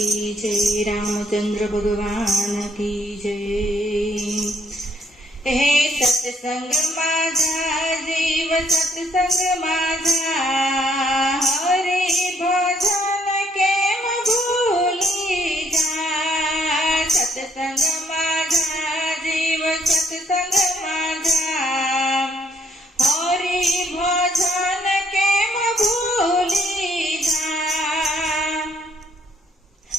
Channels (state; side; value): normal; both; correlation 0.68